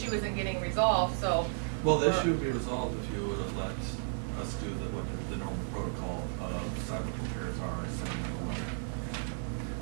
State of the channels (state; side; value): silent; left; 55 dB below the other